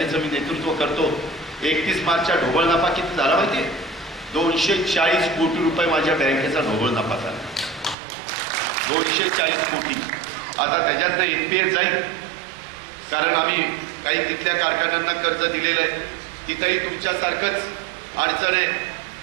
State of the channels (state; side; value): drops out; left; at 8.0 s